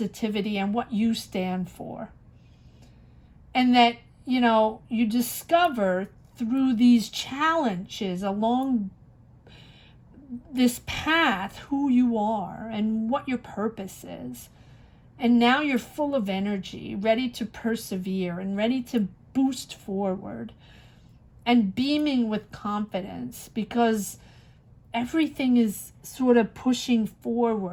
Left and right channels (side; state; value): both; identical; correlation 1.00